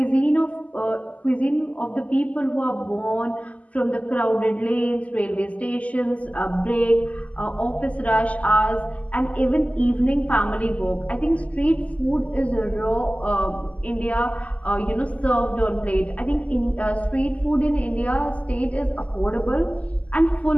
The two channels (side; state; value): right; late; 0.070 ms